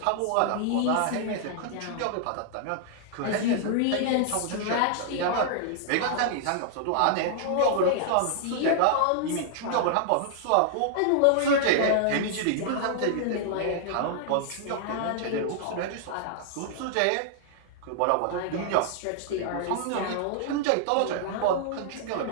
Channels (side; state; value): both; different; correlation -0.01